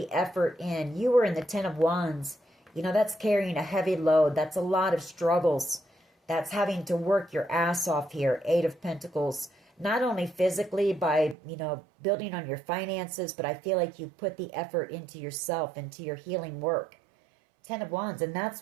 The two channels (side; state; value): left; drops out; at 11.4 s